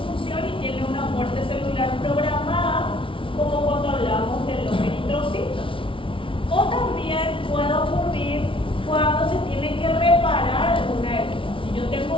y tiene una muerte celular programada, como cuando hablamos de los eritrocitos. O también puede ocurrir cuando se tiene que reparar alguna herida. Si yo tengo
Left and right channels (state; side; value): late; right; 0.25 ms